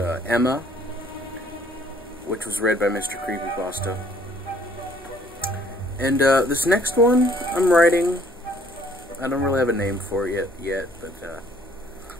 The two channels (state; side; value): noise; left; hum, 26 dB below the sound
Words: which was read by Mr. Creepypasta. And this next one I'm writing, I don't really have a name for it yet, but